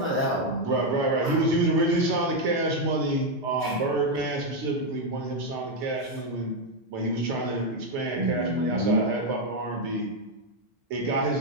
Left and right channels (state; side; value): normal; both; correlation 0.03